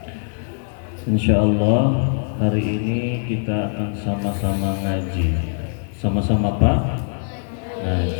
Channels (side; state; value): right; silent; 64 dB below the other